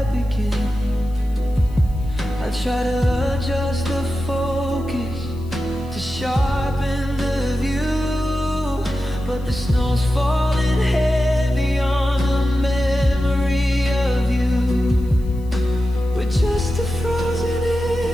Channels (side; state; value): left; noise; hiss, 28 dB below the sound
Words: begin. I try to adjust the focus to sharpen the view, but the snow's falling heavy on the memory of you. We're just a frozen